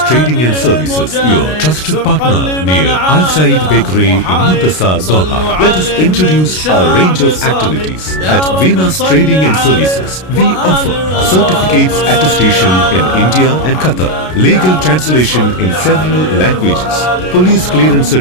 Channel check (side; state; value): right; late; 33 ms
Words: Trading and Services, your trusted partner near Al Said Bakery in Muntasa, Doha. Let us introduce our range of activities. At Venus Trading and Services, we offer certificates attestation in India and Qatar, legal translation in several languages, police clearance